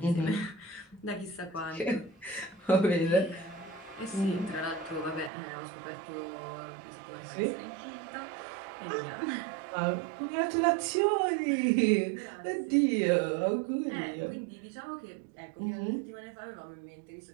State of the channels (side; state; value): left; drops out; at 5.3 s